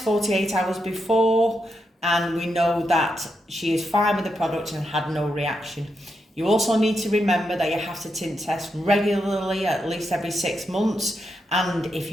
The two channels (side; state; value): both; normal; correlation 0.84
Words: 48 hours before and we know that she is fine with the product and had no reaction. You also need to remember that you have to tint test regularly, at least every 6 months. And if